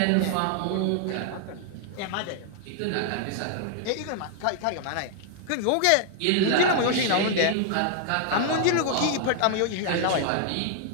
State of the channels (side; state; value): both; different; correlation 0.00